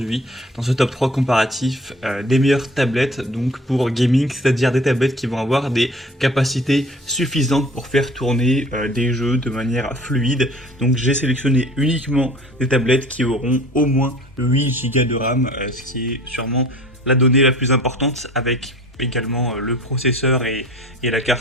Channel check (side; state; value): both; normal; correlation 0.46